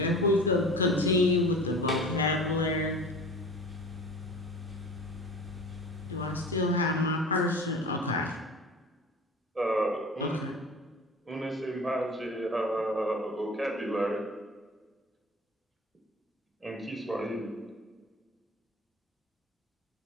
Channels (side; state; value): both; normal; correlation 0.38